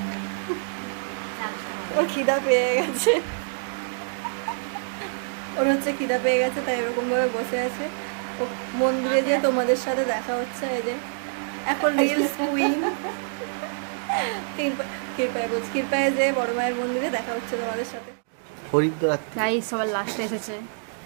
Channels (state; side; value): silent; left; digital silence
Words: ও খিদা পেয়ে গেছে, ওর হচ্ছে খিদা পেয়ে গেছে, তাই এরকম ভাবে বসে আছে। ও মন্দিরে গিয়ে তোমাদের সাথে দেখা হচ্ছে। এই যে এখন রিলস কুইন ক্ষীরপায়ে যে বড় মায়ের মন্দিরে দেখা হচ্ছে তোমাদের সাথে। গাইস সবার লাস্টে এসেছে